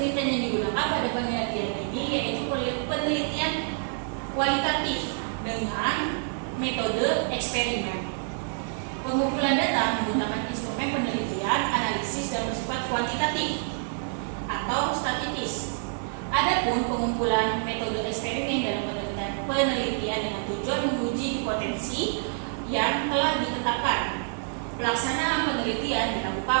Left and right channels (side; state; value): left; silent; 60 dB below the other